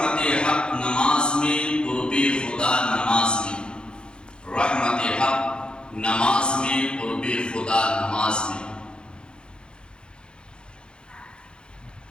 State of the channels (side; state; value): right; late; 0.051 ms